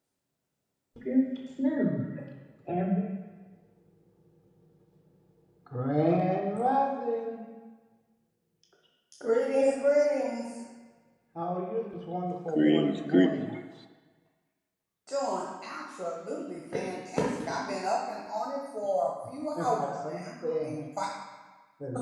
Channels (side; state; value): both; identical; correlation 1.00